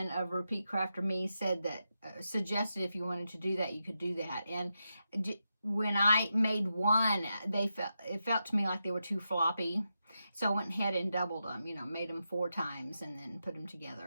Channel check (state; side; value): inverted; both; correlation -0.87